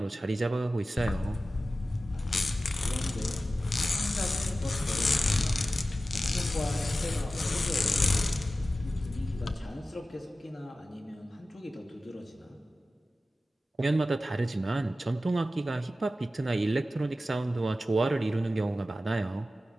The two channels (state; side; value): normal; both; correlation 0.94